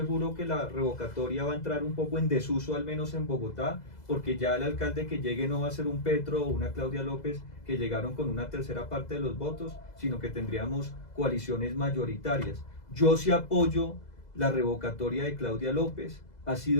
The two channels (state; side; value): late; right; 2.0 ms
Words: que la revocatoria va a entrar un poco en desuso, al menos en Bogotá, porque ya el alcalde que llegue no va a ser un Petro o una Claudia López que llegaron con una tercera parte de los votos, sino que tendríamos coaliciones mayoritarias. Yo sí apoyo la revocatoria de Claudia López. Ha